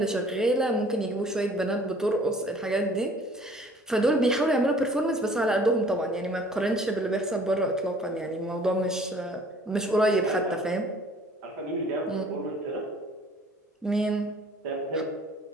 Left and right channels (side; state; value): both; normal; correlation 0.53